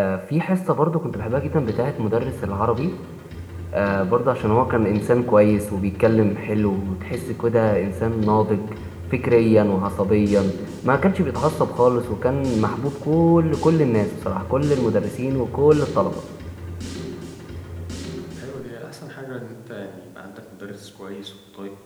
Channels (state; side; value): identical; both; correlation 1.00